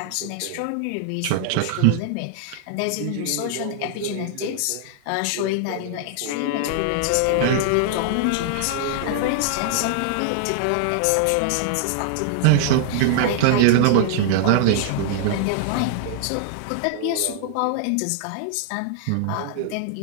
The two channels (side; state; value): both; different; correlation -0.01